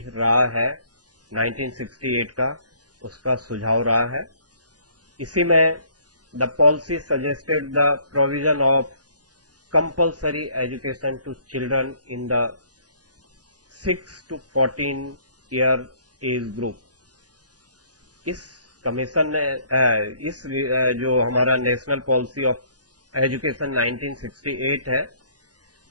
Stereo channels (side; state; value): left; late; 0.69 ms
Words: रहा है 1968 का, उसका सुझाव रहा है। इसी में the policy suggested the provision of compulsory education to children in the 6 to 14 year age group. इस कमीशन ने इस जो हमारा नेशनल पॉलिसी ऑफ एजुकेशन 1968 है,